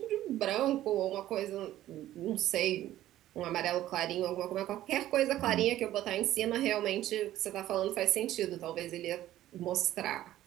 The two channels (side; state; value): left; quieter; 13.7 dB